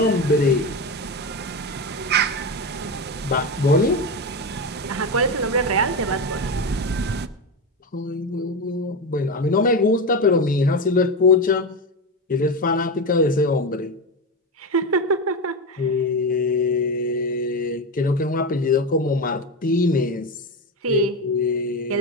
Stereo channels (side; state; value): both; normal; correlation 0.17